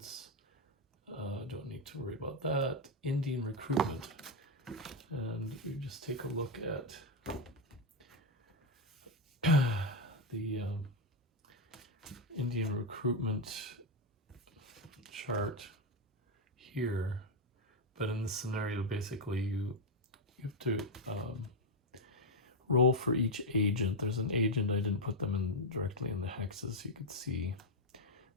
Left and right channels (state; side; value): normal; both; correlation 0.03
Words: don't need to worry about that. Indian recruitment, and we just take a look at the Indian recruitment chart here. But in this scenario, basically you have to roll for each agent. There's an agent, I didn't put them in directly in the hexes, you could see.